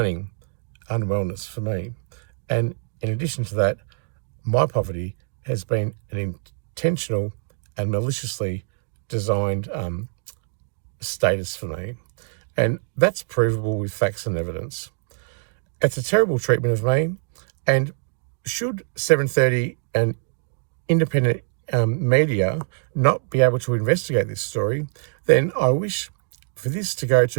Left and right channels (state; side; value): silent; left; 63 dB below the other